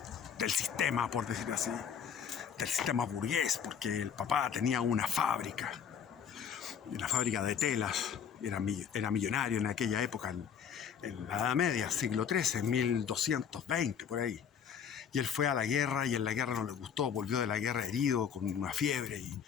del sistema, por decir así, del sistema burgués, porque el papá tenía una fábrica de telas, era millonario en aquella época, en la Edad Media, siglo XIII, 1220, por ahí. Y él fue a la guerra y en la guerra no le gustó, volvió de la guerra herido, con una fiebre,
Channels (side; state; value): right; quieter; 7.7 dB